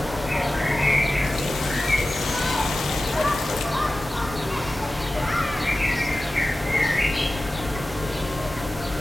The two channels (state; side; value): normal; both; correlation 0.95